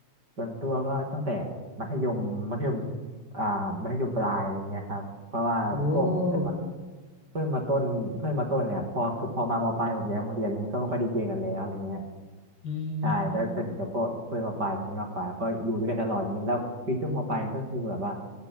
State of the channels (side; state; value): left; late; 5.1 ms